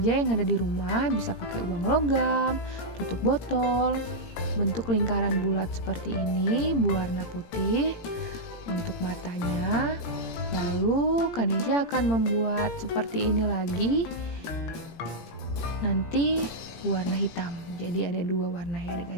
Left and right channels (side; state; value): right; late; 18 ms